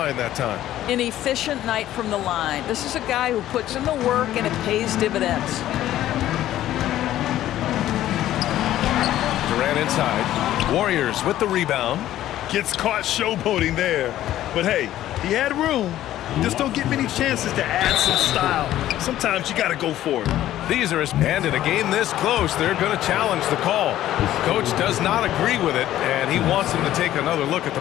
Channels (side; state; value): right; quieter; 13.2 dB